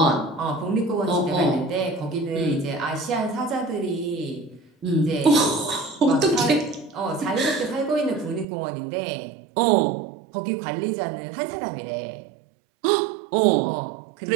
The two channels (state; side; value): drops out; left; at 8.5 s